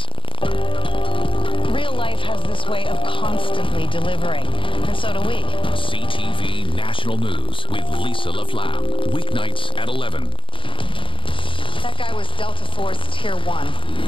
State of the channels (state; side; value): late; right; 0.25 ms